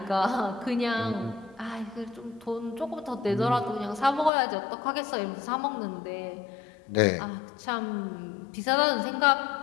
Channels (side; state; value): right; drops out; at 4.3 s